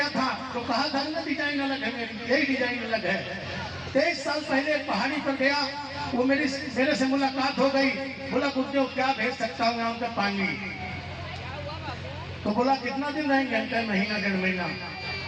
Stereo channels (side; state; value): both; identical; correlation 1.00